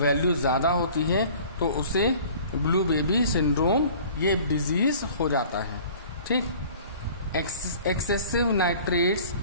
ज़्यादा होती है तो उसे ब्लू बेबी सिंड्रोम ये डिजीज हो जाता है। ठीक, excessive nitrates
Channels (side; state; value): both; inverted; correlation -0.47